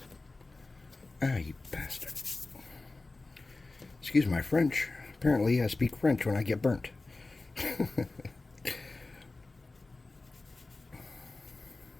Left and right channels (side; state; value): right; quieter; 3.3 dB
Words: Ah, you bastard. Excuse my French. Apparently I speak French when I get burnt.